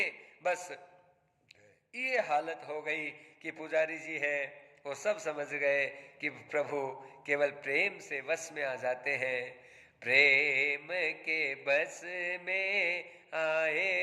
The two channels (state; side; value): identical; both; correlation 1.00